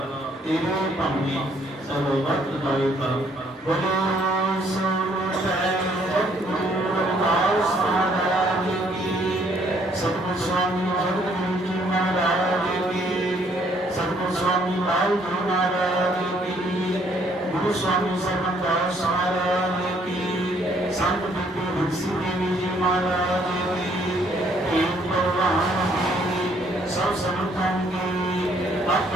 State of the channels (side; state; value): both; normal; correlation 0.66